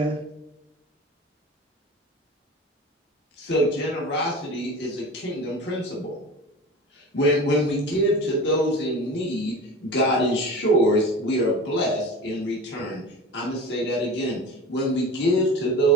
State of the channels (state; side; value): normal; both; correlation 0.34